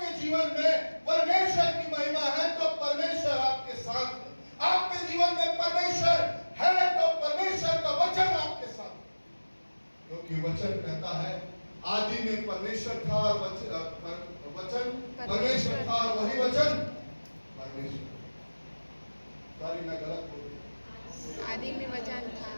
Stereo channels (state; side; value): inverted; both; correlation -1.00